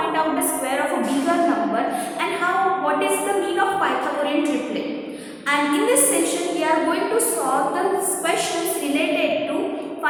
out the square of a bigger number and what is the mean of Pythagorean triplet. And in this session we are going to solve the questions related to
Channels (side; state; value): both; identical; correlation 1.00